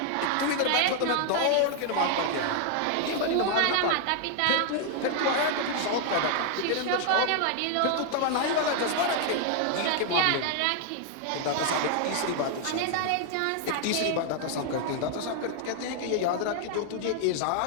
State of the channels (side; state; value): both; different; correlation 0.00